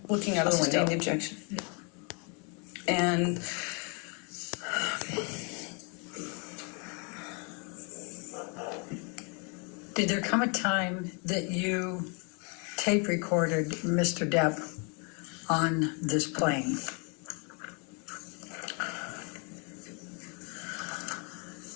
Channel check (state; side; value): quieter; right; 35.4 dB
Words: looking out of the window. Sustain the objection. And Did there come a time that you tape recorded Mr. Depp on this plane?